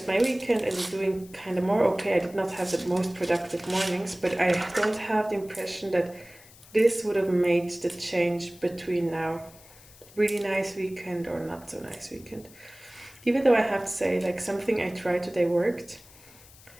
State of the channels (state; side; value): noise; left; hiss, 23 dB below the sound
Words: my weekend in doing kind of more. Okay, I did not have the most productive mornings, but I don't have the impression that this would have made the change between now. Really nice weekend or not so nice weekend. Even though I have to say, like, something I tried today worked.